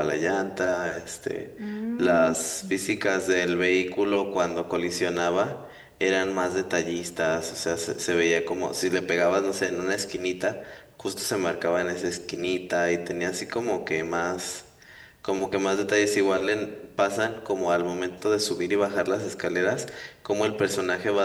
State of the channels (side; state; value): both; identical; correlation 1.00